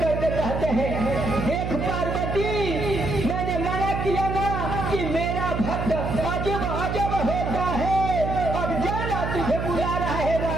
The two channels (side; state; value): right; noise; hum, 3 dB below the sound